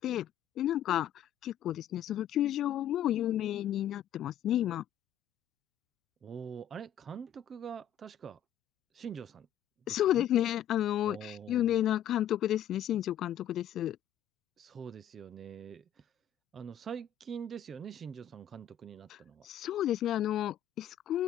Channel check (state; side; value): quieter; right; 10.1 dB